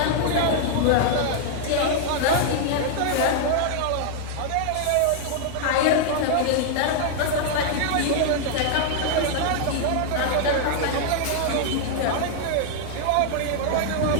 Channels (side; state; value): both; different; correlation -0.01